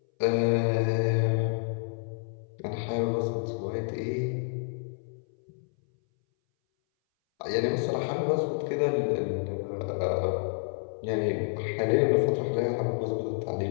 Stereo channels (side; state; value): right; silent; 59 dB below the other